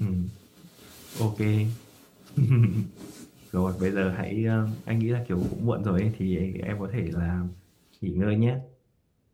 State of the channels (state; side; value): identical; both; correlation 1.00